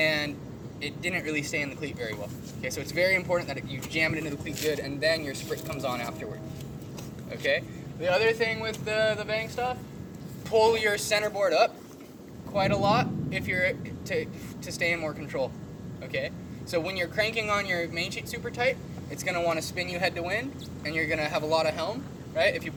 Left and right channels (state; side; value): identical; both; correlation 1.00